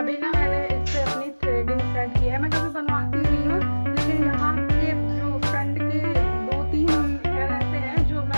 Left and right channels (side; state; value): both; inverted; correlation -1.00